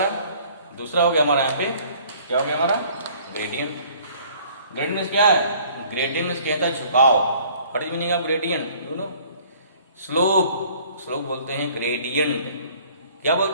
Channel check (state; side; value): inverted; both; correlation -0.55